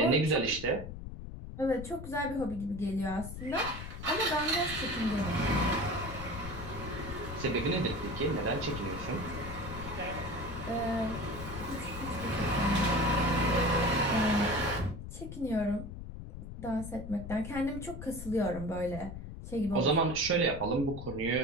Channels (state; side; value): noise; left; rumble, 10 dB below the sound